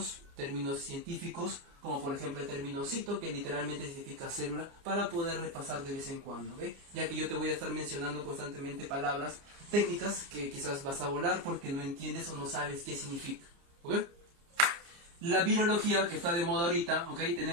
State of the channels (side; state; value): left; late; 29 ms